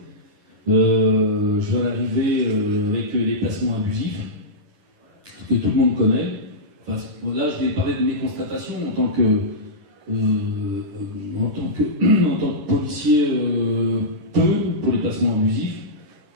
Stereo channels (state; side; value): late; left; 11 ms